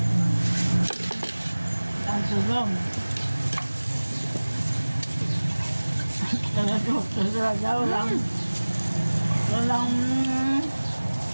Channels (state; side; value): inverted; both; correlation -1.00